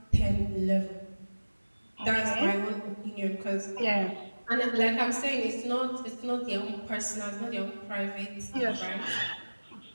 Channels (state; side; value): inverted; both; correlation -1.00